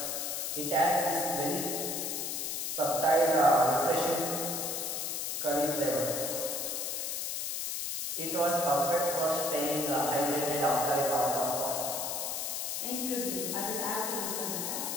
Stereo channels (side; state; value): left; noise; hiss, 2 dB below the sound